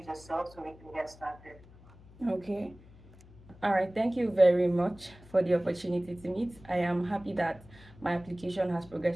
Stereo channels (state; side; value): noise; left; hum, 23 dB below the sound